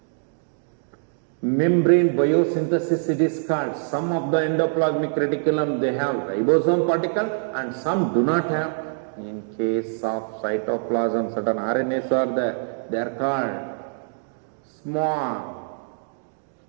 Membrane biosynthesis, it is called. Some of the endoplasmic reticulum, they have ribosome particle and some do not have. In case of cytoplasm, certain RNAs are there. They are called small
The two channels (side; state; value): left; silent; digital silence